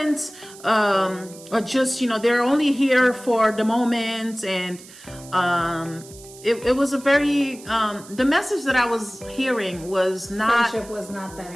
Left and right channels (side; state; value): right; noise; hiss, 19 dB below the sound